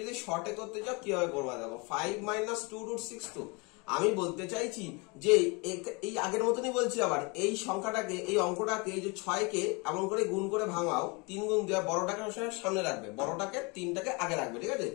যদি শর্টে করতে চাও কিভাবে করবা দেখো, 5 minus 2 √6, তো আমি বলতে চাইছি যে এই আগের মতনই বলছি, আবার এই সংখ্যাটাকে, এই অঙ্কটাকে, এই যে 6 কে এমন করে গুণ করে ভাঙাও, 3 গুণ দেওয়া, বড়টাকে সামনে রাখবে, বড়টাকে 3টাকে আগে রাখবে, ঠিক আছে?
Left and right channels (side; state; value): right; quieter; 29.2 dB